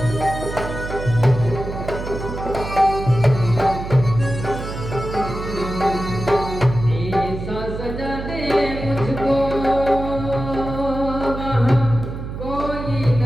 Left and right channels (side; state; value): right; noise; hum, 8 dB below the sound